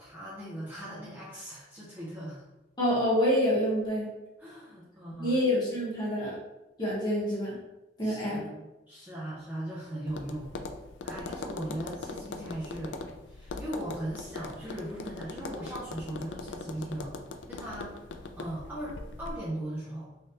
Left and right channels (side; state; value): both; normal; correlation 0.38